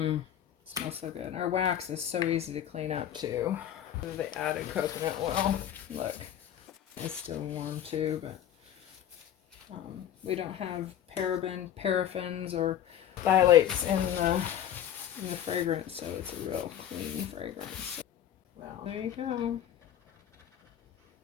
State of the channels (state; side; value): quieter; right; 10.5 dB